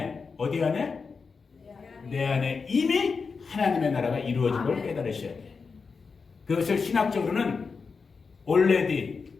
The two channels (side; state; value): right; quieter; 5.0 dB